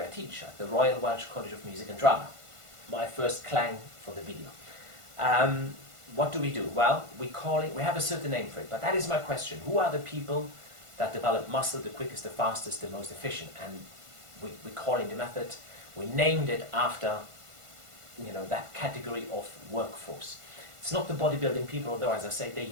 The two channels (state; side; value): late; left; 1.5 ms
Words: I teach, at the Royal Welsh College of Music and Drama. My first clang for the video. What do we do? Well, we have a certain name for it, but that is my question. Who are the people that develop muscle the quickest, the fastest, the most efficient? And we're calling the method, We named it after, you know, that category of workforce. It's not the bodybuilding people, although, as I say, they